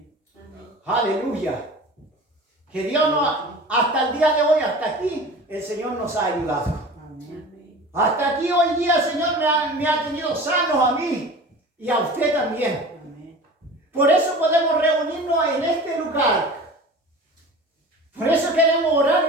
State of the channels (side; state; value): both; normal; correlation 0.38